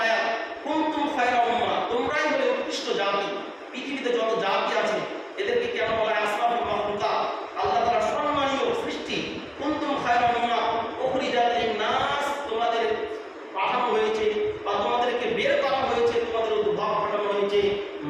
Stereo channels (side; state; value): both; identical; correlation 1.00